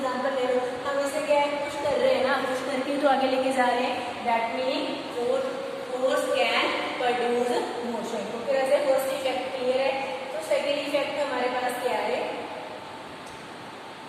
ले लो, हम इसे क्या है पुश कर रहे हैं ना, पुश करके तो आगे लेके जा रहे हैं। That meaning force can produce motion. तो फिर ऐसे फर्स्ट इफेक्ट क्लियर है। तो सेकंड इफेक्ट हमारे पास क्या है,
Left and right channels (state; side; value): identical; both; correlation 1.00